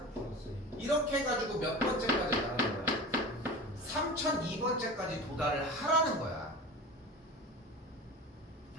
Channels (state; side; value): normal; both; correlation 0.33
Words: 플러스. 이렇게 해가지고 몇 번째까지 가는 거야? 3002번째까지 도달을 하라는 거야.